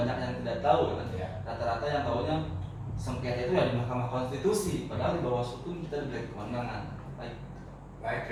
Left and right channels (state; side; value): identical; both; correlation 1.00